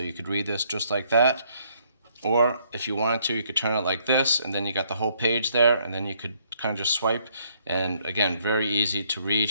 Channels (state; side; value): inverted; both; correlation -0.68